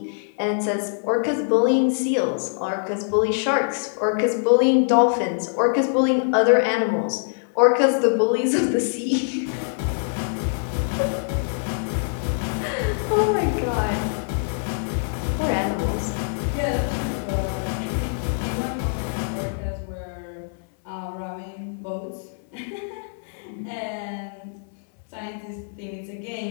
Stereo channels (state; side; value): silent; right; 63 dB below the other